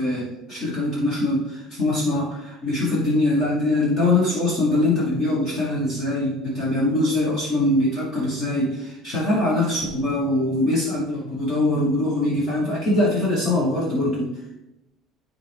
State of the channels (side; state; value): both; normal; correlation 0.44